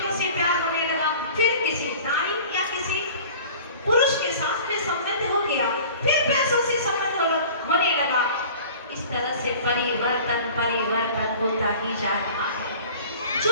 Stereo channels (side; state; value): both; inverted; correlation -0.43